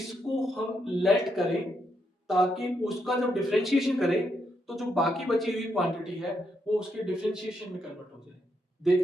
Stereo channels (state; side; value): normal; both; correlation 0.79